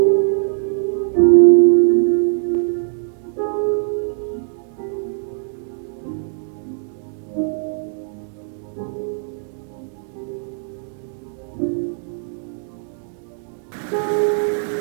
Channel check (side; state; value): left; silent; digital silence